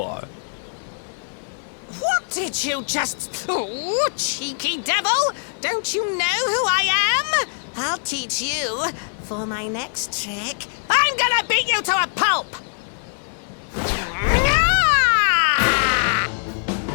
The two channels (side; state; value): right; silent; digital silence